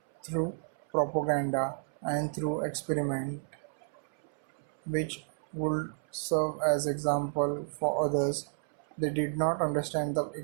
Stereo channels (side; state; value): left; silent; 57 dB below the other